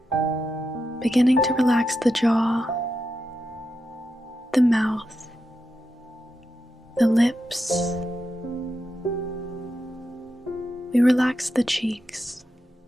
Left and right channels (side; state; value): both; normal; correlation 0.87